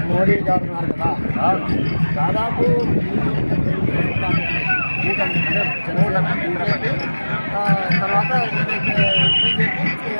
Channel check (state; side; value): inverted; both; correlation -1.00